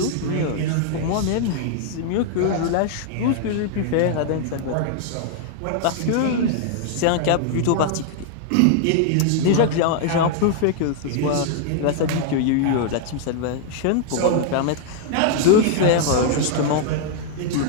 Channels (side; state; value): both; different; correlation 0.00